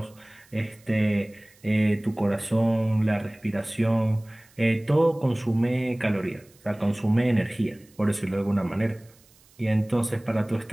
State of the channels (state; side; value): noise; right; hiss, 29 dB below the sound